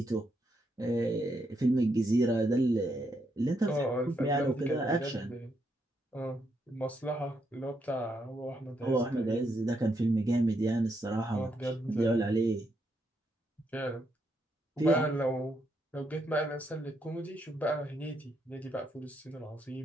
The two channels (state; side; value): normal; both; correlation 0.78